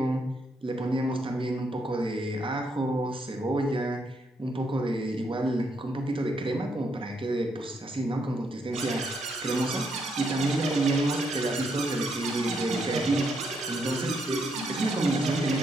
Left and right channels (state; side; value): normal; both; correlation 0.76